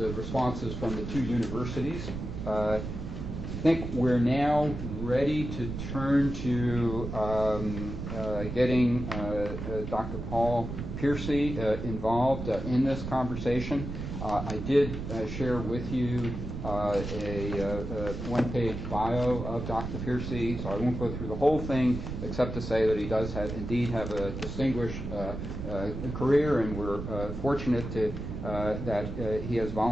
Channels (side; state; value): right; noise; rumble, 6 dB below the sound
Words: responses from the 2 universities. I think we're now ready to turn to getting Dr. Paul Pearcy involved in this conversation. I did share with you a one-page bio of Dr. Pearcy, so I won't go through the whole thing except to say that he does indeed have a distinguished career, and we're fortunate that he has